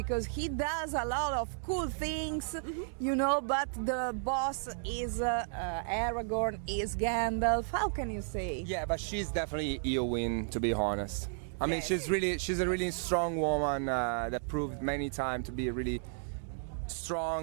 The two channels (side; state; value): left; silent; digital silence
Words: he does a lot of cool things, but the boss is Aragorn, is Gandalf. How can you say? Yeah, but she's definitely Eowyn, to be honest. I mean, Yes. she's a really strong woman that proved many times to be really